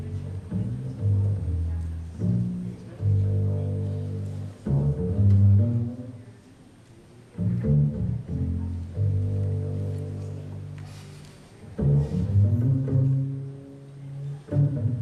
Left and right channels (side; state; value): both; identical; correlation 1.00